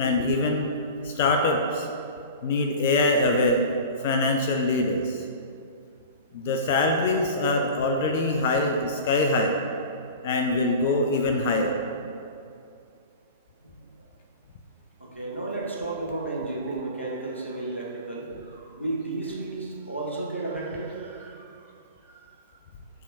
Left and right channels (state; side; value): inverted; both; correlation -0.35